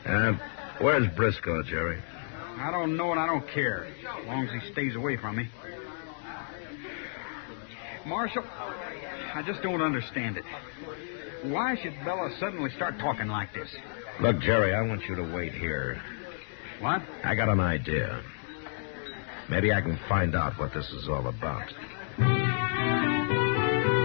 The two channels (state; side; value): silent; right; digital silence